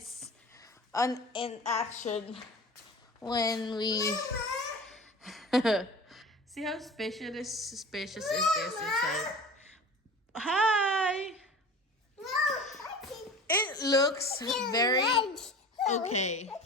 in action. When we see how spacious is this inside. Hi. It looks very okay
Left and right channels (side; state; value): both; normal; correlation 0.37